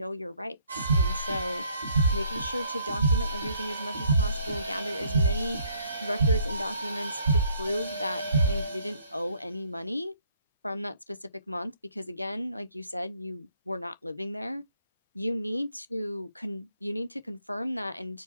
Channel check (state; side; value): inverted; both; correlation -0.66